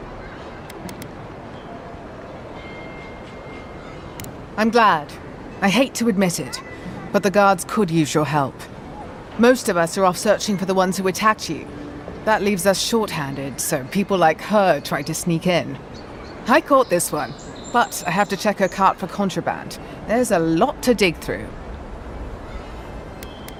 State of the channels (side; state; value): both; identical; correlation 1.00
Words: I'm glad. I hate to admit it, but the guards could use your help. Most of us are off searching for the ones who attacked you. That leaves us short-handed, so people like her try to sneak in. I caught this one, but I have to check her cart for contraband. There's a lot to dig through.